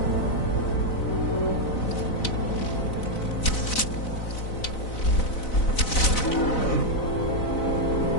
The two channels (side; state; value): right; late; 4.0 ms